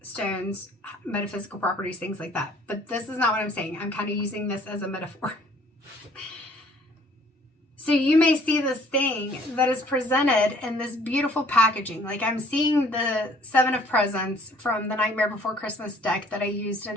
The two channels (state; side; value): normal; both; correlation 0.58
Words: stones, metaphysical properties, things like that, but this is not what I'm saying. I'm kind of using this as a metaphor. So you may see this thing that is presented in this beautiful packaging. Like I'm seeing the Seven of Presents from the Nightmare Before Christmas deck that I used